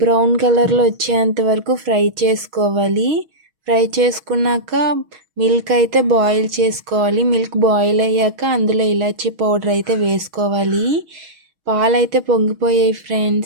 బ్రౌన్ కలర్లో వచ్చేంత వరకు ఫ్రై చేసుకోవాలి. ఫ్రై చేసుకున్నాక మిల్క్ అయితే బాయిల్ చేసుకోవాలి. మిల్క్ బాయిల్ అయ్యాక అందులో ఇలాచీ పౌడర్ అయితే వేసుకోవాలి. పాలైతే పొంగిపోయాయి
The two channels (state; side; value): late; left; 6.3 ms